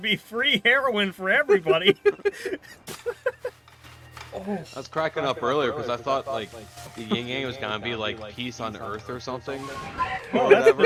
free heroin for everybody. I was cracking up earlier because I thought like the yin yang was gonna be like peace on Earth or something. Well, Or whatever.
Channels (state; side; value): identical; both; correlation 1.00